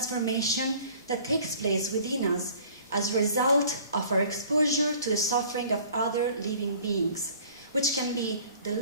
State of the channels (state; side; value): inverted; both; correlation -0.50